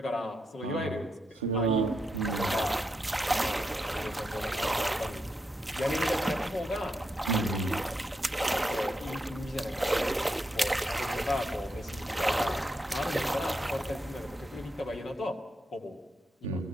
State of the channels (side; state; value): both; normal; correlation 0.83